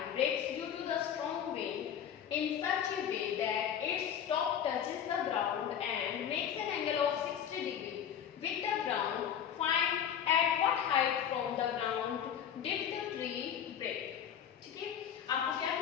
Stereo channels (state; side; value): quieter; right; 9.0 dB